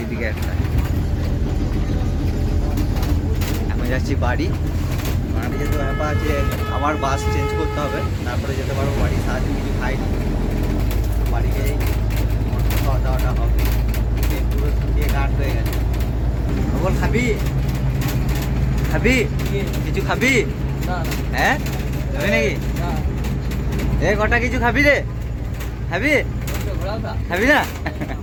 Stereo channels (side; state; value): both; identical; correlation 1.00